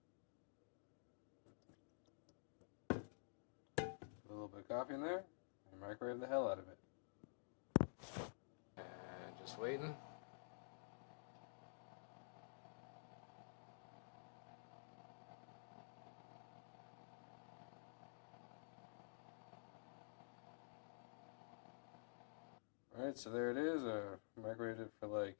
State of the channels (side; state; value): right; silent; digital silence